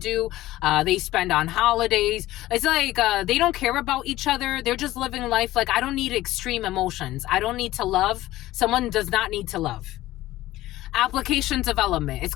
They spend on holidays. It's like they don't care about each other. They're just living life. Like, I don't need extreme emotions. I don't need to love. Someone does not need to love. Application development. It's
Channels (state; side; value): quieter; right; 16.1 dB